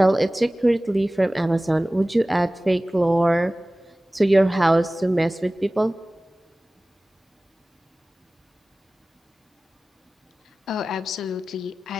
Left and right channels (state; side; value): normal; both; correlation 0.98